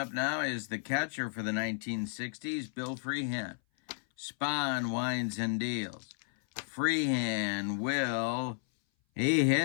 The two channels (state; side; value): silent; right; 56 dB below the other